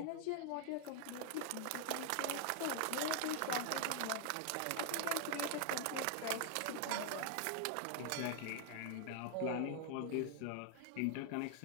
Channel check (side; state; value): both; different; correlation 0.00